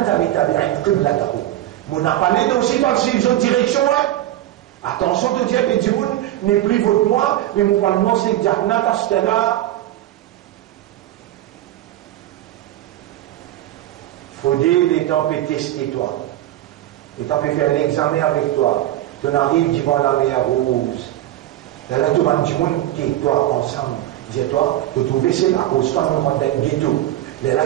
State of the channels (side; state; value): left; quieter; 14.0 dB